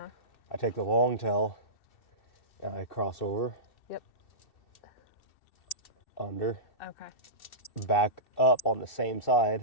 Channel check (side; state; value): right; late; 2.7 ms